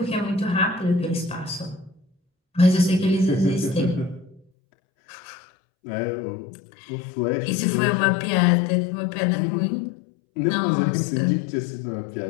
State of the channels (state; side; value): drops out; right; at 4.4 s